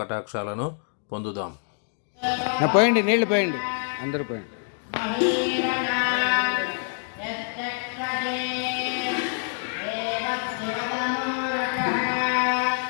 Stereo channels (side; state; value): right; silent; 61 dB below the other